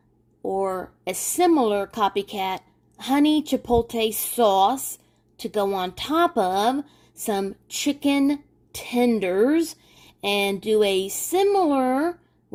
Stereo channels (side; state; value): both; identical; correlation 1.00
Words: or a similar copycat honey chipotle sauce to go on top of some chicken tenders and do a similar